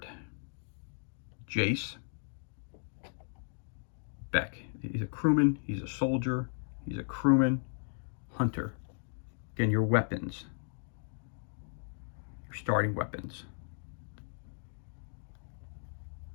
Jace, Beck. He's a crewman, he's a soldier, He's a crewman, hunter. Again, your weapons, your starting weapons.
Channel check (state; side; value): silent; right; digital silence